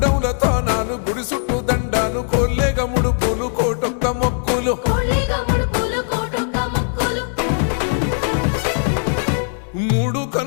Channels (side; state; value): right; silent; 62 dB below the other